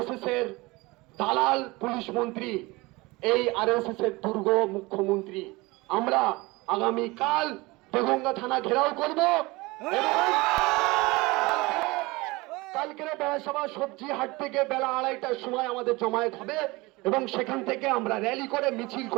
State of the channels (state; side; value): quieter; left; 22.8 dB